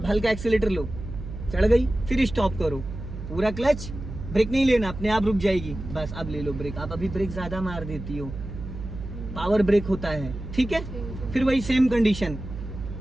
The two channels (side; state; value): right; noise; hum, 9 dB below the sound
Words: हल्का एक्सीलेटर लो, चढ़ गई, फिर स्टॉप करो, पूरा क्लच, ब्रेक नहीं लेना, अपने आप रुक जाएगी, बस अब ले लो ब्रेक। आप अभी ब्रेक ज्यादा मार देती हो, पावर ब्रेक होता है, ठीक है। फिर वही सेम कंडीशन,